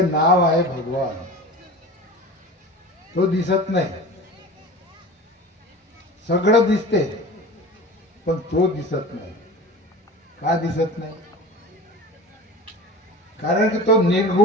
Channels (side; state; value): both; normal; correlation 0.35